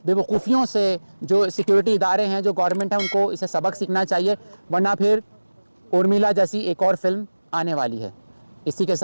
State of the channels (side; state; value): both; inverted; correlation -1.00